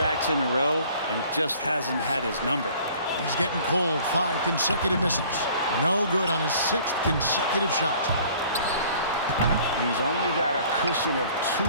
in a row and just hasn't had his number. He's getting cold. 5 consecutive misses. No good on his 6th consecutive shot. He's only got a cushion of 2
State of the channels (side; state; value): both; inverted; correlation -0.53